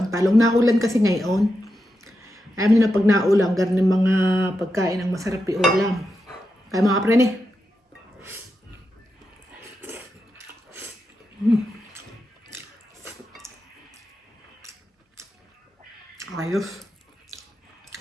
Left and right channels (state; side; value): normal; both; correlation 0.87